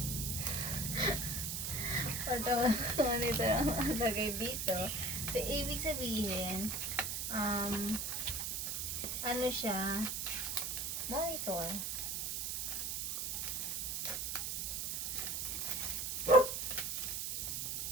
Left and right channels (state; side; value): noise; right; hiss, 1 dB below the sound